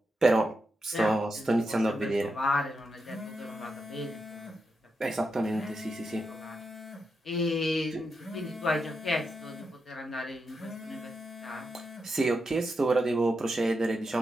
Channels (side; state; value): both; normal; correlation 0.86